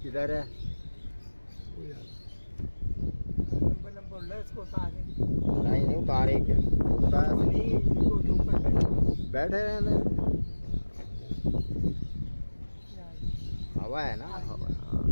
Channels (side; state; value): both; inverted; correlation -1.00